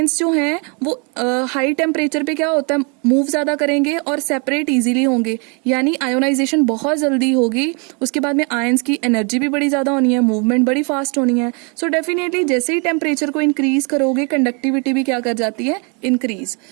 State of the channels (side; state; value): left; quieter; 34.5 dB